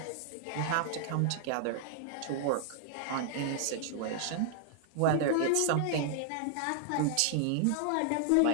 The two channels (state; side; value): different; both; correlation -0.01